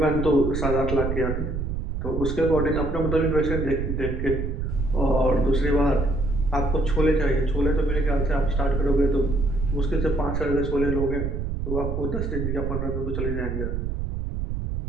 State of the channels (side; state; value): right; noise; rumble, 2 dB below the sound